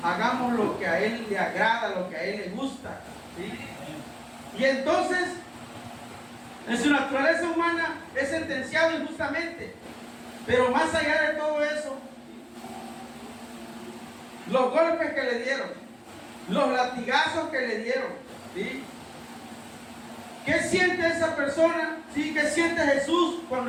hagamos lo que a Él le agrada, lo que a Él le gusta, ¿sí? Y entonces, en su naturaleza humana es sentenciado injustamente. Pero más allá de todo eso, los golpes que le dieron, los latigazos que le dieron, ¿sí? ¿Qué siente esa persona? ¿Sí? ¿Qué siente Jesús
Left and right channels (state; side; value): identical; both; correlation 1.00